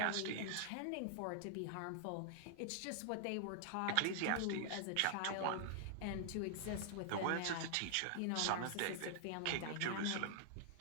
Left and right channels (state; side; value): different; both; correlation -0.01